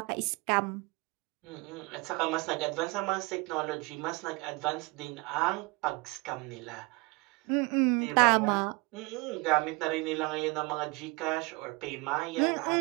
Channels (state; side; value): quieter; left; 26.6 dB